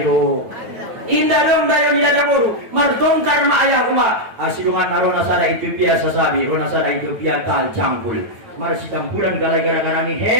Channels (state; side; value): late; left; 9.1 ms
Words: Indah dong dayo di dada buru. Martongkar ma ayah uma. Asidungan arona sada Ethiopia sasabi. Rona sada Ethiopia tal cangkul. Marsi campuran galai gara-gara ni